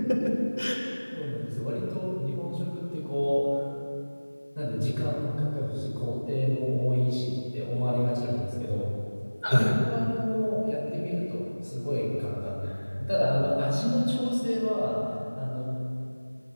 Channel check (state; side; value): inverted; both; correlation -1.00